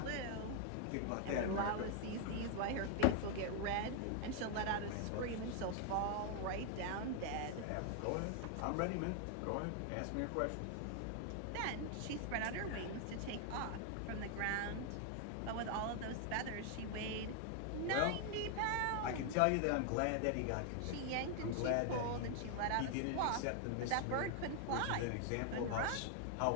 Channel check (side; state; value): both; different; correlation 0.00